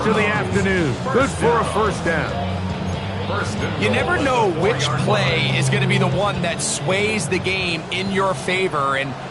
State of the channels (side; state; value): both; identical; correlation 1.00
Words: of the afternoon. Good for a first down. You never know which play is going to be the one that sways the game in your favor, and